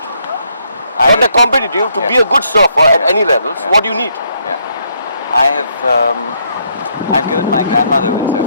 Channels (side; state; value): both; inverted; correlation -0.73